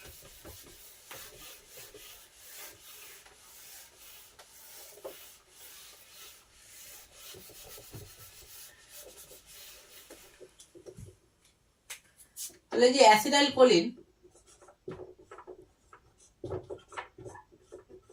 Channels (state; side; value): identical; both; correlation 1.00